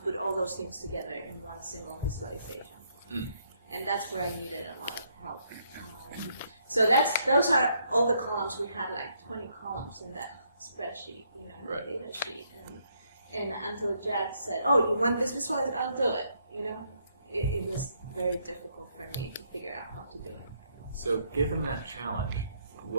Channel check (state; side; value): inverted; both; correlation -0.72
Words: all those things together in one single visualization. And that's where I needed a lot of help. So those are all the columns. We had like 20 columns in that spreadsheet, in the data sheet. And until Jack said, "Oh, you want this visualized? I'll do it." It was very difficult for me to figure out how to do it. So, given that challenge,